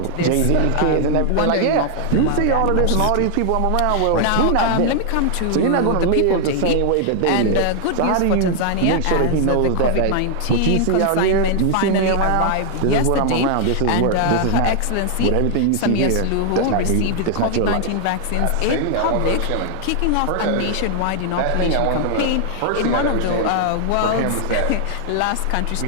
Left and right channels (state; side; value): different; both; correlation 0.00